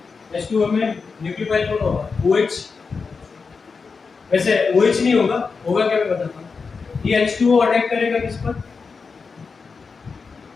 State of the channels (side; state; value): right; quieter; 4.9 dB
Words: H2O में न्यूक्लियोफाइल कौन होगा, OH, वैसे OH नहीं होगा, होगा क्या मैं बताता हूँ। ये H2O अटैक करेगा किस पर,